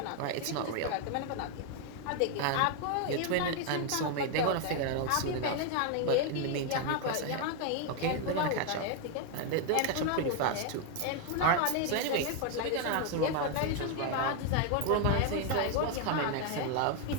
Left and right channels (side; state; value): both; different; correlation 0.01